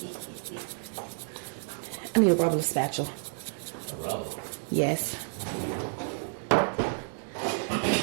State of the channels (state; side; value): silent; left; digital silence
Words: I need a rubber spatula. A rubber? Yes.